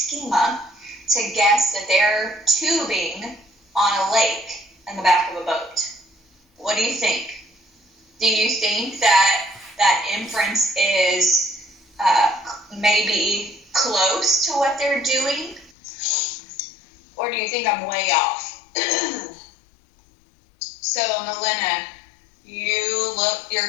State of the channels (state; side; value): drops out; right; at 15.7 s